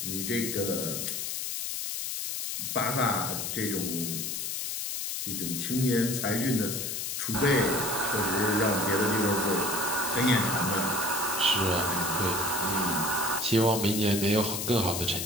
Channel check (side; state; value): left; noise; hiss, 3 dB below the sound